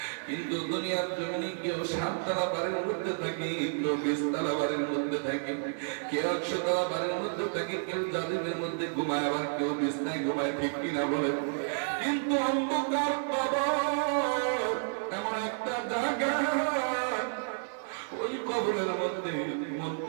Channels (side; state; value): left; silent; 56 dB below the other